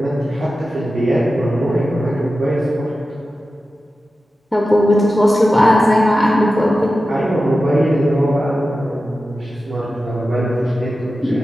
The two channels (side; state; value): both; normal; correlation 0.93